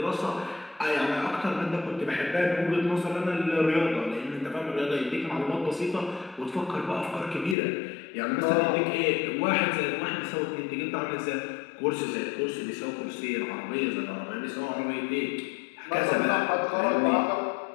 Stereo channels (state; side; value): drops out; right; at 7.6 s